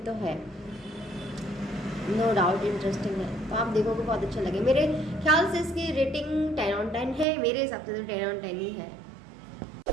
है, नो डाउट इंटरेस्टिंग है। तो आप देखोगे बहुत अच्छा लगे। मेरे ख्याल से इसकी रेटिंग 10/10 है, मेरे हिसाब से तो 10/10 ही है।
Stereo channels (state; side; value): drops out; left; at 7.2 s